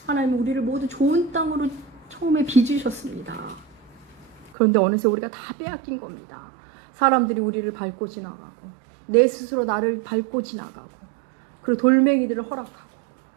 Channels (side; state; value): left; drops out; at 4.5 s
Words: 하나님은 우리를 모두 좋은 땅으로 처음에 빚으셨습니다. 그런데 어느새 우리가 다 빼앗긴 겁니다. 사람들이 우리를 밟고 지나가고 내 스스로 나를 밟고 지나가고, 그리고 돌멩이들을 허락하고